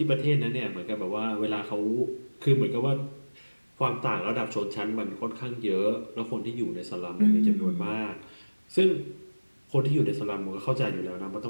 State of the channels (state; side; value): inverted; both; correlation -1.00